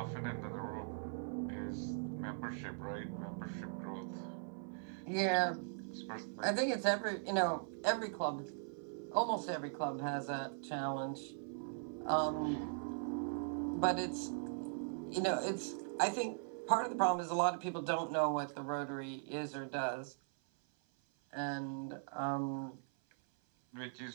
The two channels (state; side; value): silent; left; 51 dB below the other